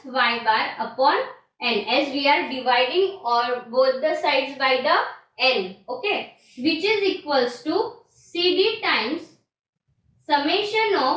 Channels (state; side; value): identical; both; correlation 1.00